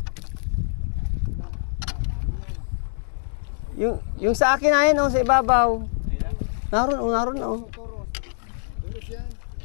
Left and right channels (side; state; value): right; silent; digital silence